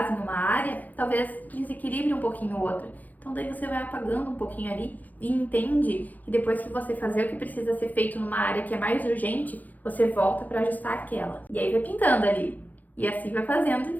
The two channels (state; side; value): late; right; 0.081 ms